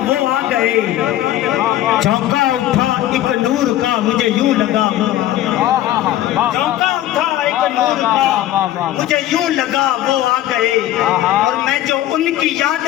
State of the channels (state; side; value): quieter; right; 13.5 dB